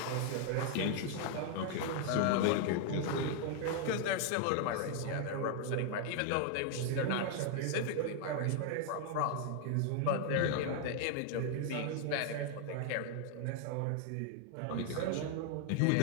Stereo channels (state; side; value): different; both; correlation 0.00